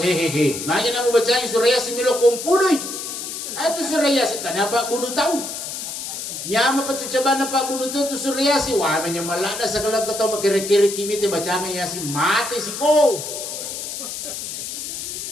Makanya namu bacaan surah yasin milo kompunoi. Itu surah yasin kenapa kudu tahu? Nyama patu coba nampak bunuh tu surah yasin. Wah menyemalada segala ketau kira-kira kimi te bacaan yasin mati si ko.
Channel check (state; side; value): noise; left; hiss, 6 dB below the sound